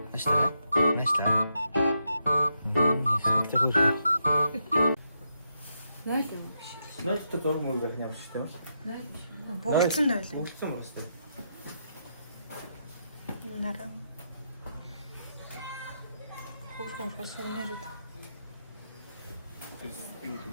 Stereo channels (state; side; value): inverted; both; correlation -0.81